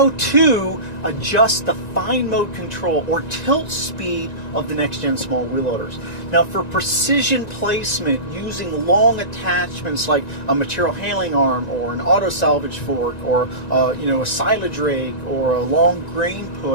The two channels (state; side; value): late; right; 1.9 ms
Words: to adjust the fine mode control or tilt speed of the next gen small wheel loaders. Now, for precision placement using long attachments like a material handling arm or an auto salvage fork or a silage rake or a long grain